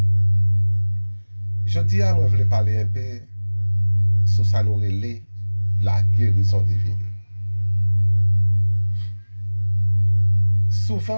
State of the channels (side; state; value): both; inverted; correlation -1.00